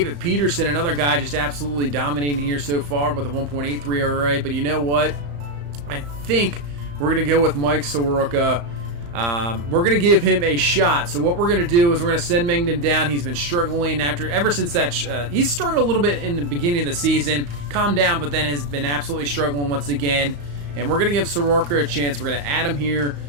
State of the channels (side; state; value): left; late; 35 ms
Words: Peterson, another guy just absolutely dominating here so far with a 1.83 ERA. But you know what? I think we're going to go with Mike Soroka. We're going to give him a shot. So what we're going to do is we're going to send Mengden down. He's been struggling ever since that. He's struggled a little bit in the beginning of the season. Calmed down, but then has been absolutely struggling once again. And we're going to give Soroka a chance. We're going to add him here